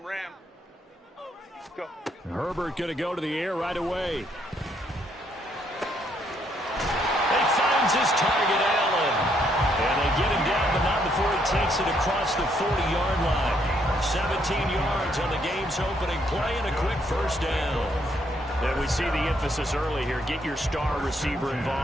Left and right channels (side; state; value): both; normal; correlation 0.72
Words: Go. Herbert going to go to the air right away. He finds his target, Allen. And they get him down, but not before he takes it across the 40-yard line. 17 yards on the game's opening play and a quick first down. And we see the emphasis early here. Get your star receiver